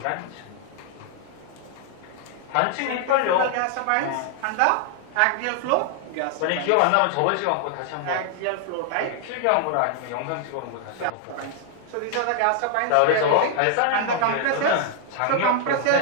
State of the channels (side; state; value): both; different; correlation 0.00